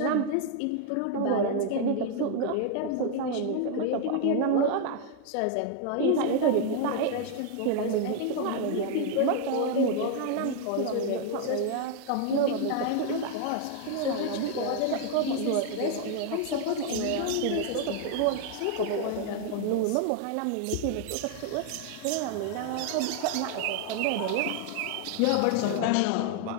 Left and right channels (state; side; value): different; both; correlation 0.00